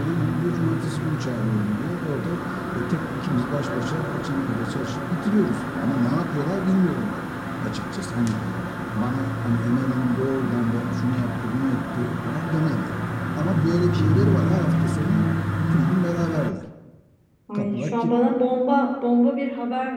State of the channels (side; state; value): both; identical; correlation 1.00